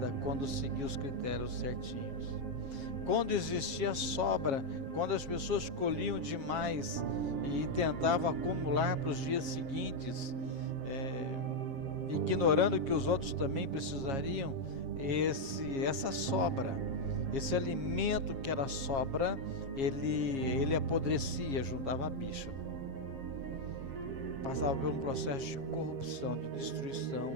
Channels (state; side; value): late; left; 7.4 ms